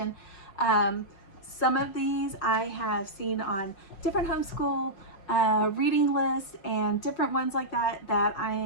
Some of these I have seen on different homeschool reading lists and different ones like that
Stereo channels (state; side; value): late; right; 5.5 ms